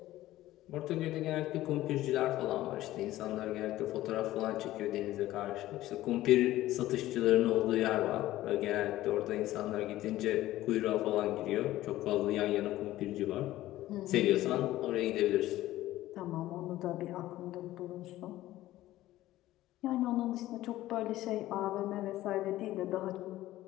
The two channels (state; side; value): quieter; right; 15.4 dB